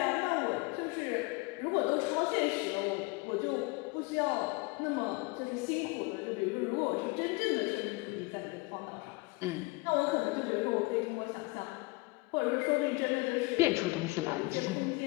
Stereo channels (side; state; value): right; quieter; 25.5 dB